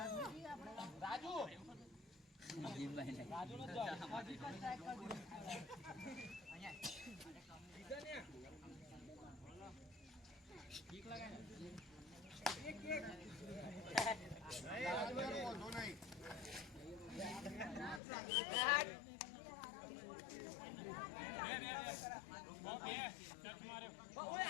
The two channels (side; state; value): right; drops out; at 18.0 s